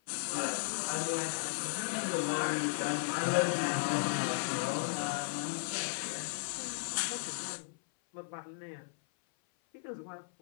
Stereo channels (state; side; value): silent; right; 54 dB below the other